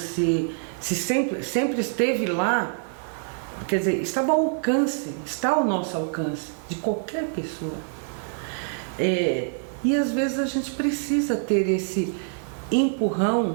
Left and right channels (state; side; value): silent; left; 56 dB below the other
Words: sempre esteve lá, quer dizer, estava ao alcance, está ao nosso alcance, de qualquer pessoa. E às vezes a gente precisa ter esse